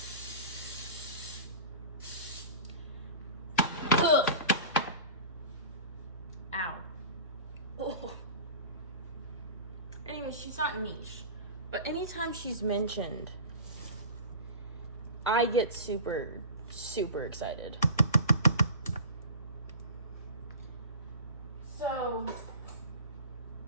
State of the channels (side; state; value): both; inverted; correlation -0.35